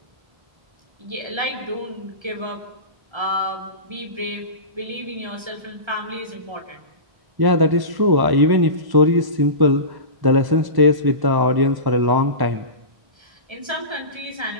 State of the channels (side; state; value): left; late; 1.1 ms